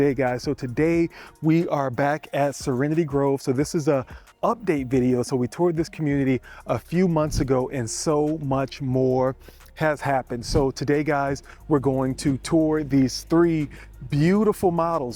guys. So today we are back at Serenity Grove. So this is a update video. So we toured this community a few months ago and so much more has happened. So today, guys, we're going to tour these three beautiful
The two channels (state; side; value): identical; both; correlation 1.00